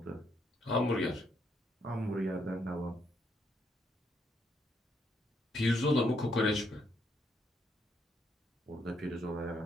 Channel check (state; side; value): normal; both; correlation 0.74